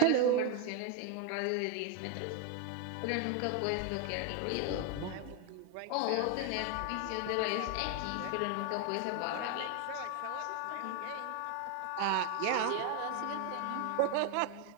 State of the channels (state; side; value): different; both; correlation 0.01